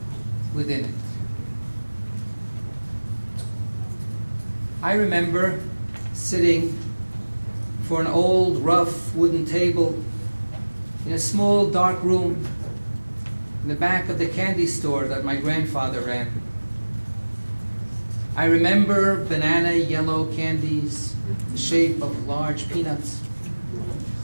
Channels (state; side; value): inverted; both; correlation -1.00